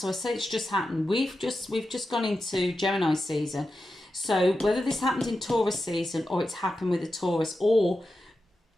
I say it's just happened. We've just gone into Gemini season. So whether this happened in Taurus season or it's happened with a Taurus, or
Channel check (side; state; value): both; normal; correlation 0.90